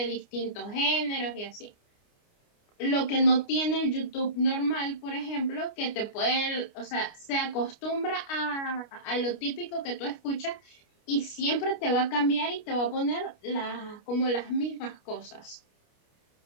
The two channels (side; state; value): right; late; 29 ms